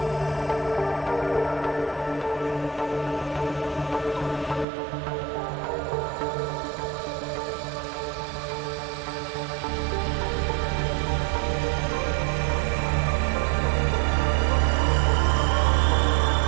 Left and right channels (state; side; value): drops out; left; at 4.7 s